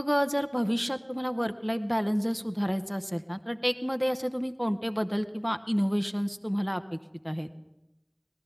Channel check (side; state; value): both; identical; correlation 1.00